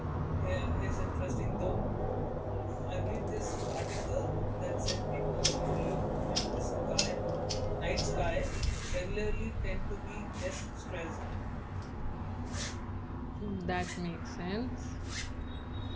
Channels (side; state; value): both; identical; correlation 1.00